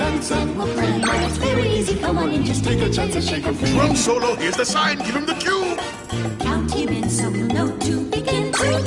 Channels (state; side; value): identical; both; correlation 1.00